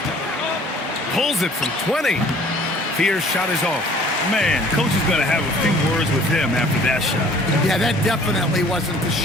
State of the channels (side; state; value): both; normal; correlation 0.53